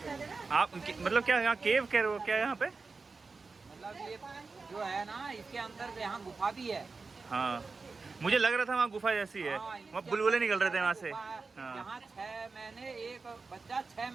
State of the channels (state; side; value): quieter; left; 4.2 dB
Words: आप मतलब क्या यहाँ केव कह रहे हो क्या यहाँ पे? मतलब ये जो है ना इसके अंदर यहाँ गुफा भी है। हाँ मुझे लग रहा था वहाँ गुफा जैसी है, हाँ, वहाँ बुलबुले निकल रहे थे वहाँ से। हाँ। यहाँ 6 महीने एक बच्चा 6